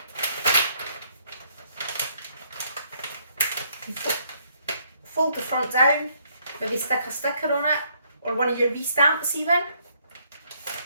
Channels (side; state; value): both; inverted; correlation -0.69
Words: Fold the front down, maybe stick a sticker on it or one of your V-stamps even.